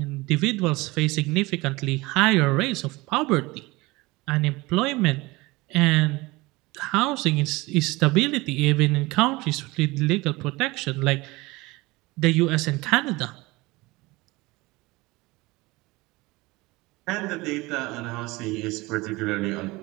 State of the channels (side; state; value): left; quieter; 22.0 dB